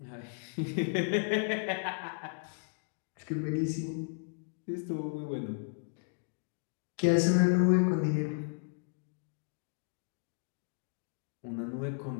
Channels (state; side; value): silent; right; digital silence